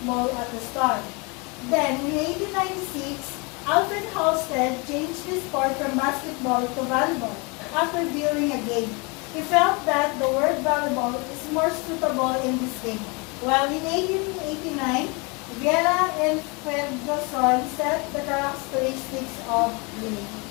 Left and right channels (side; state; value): right; quieter; 29.8 dB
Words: at the start. Then, in 1896, Alfred Halstead changed the sport from basketball to volleyball after viewing a game. He felt that the word volleyball is more suitable in this game. While in 1889, Vieira and Ferguson set the characteristics of the